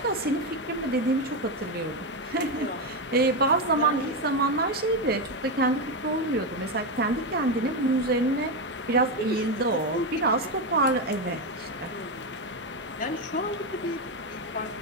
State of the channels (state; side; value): normal; both; correlation 0.10